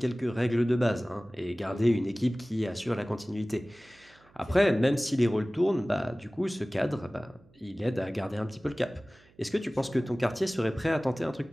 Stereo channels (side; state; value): right; noise; hum, 29 dB below the sound